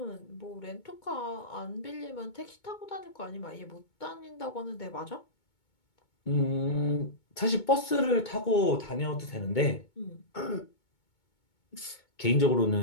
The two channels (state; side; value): late; right; 2.2 ms